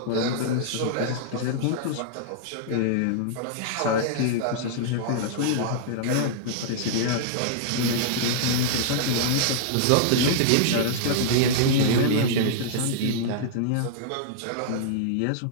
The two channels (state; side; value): different; both; correlation -0.02